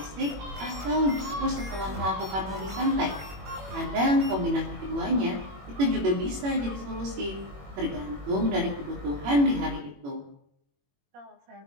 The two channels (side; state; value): left; late; 21 ms